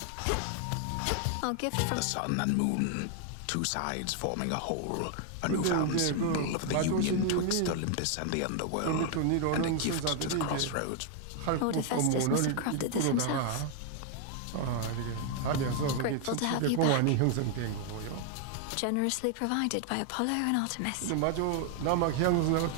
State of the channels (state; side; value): different; both; correlation 0.00